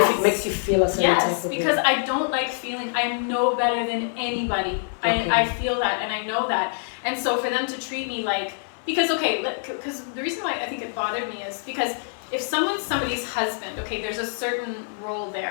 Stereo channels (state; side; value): silent; right; digital silence